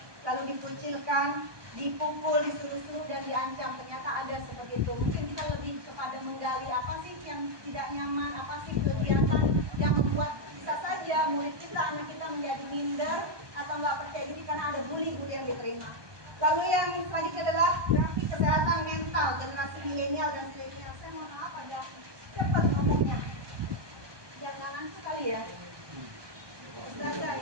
lalu dikucilkan, dipukul, disuruh-suruh dan diancam. Ternyata ada seperti itu. Mungkin kita lebih kepada menggali apa sih yang tidak nyaman, apa sih kegiatan yang membuat bisa saja murid kita, anak kita menjadi minder atau nggak percaya diri karena ada bully-bully yang diterima. Lalu yang selanjutnya adalah grafik kesehatan mental generasi milenial dan zilenial. Saya mohon maaf ada cepat ngomongnya, jangan sekali ya. Ustazah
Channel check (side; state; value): left; late; 1.2 ms